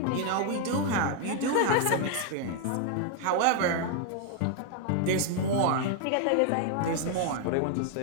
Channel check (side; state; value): both; different; correlation 0.00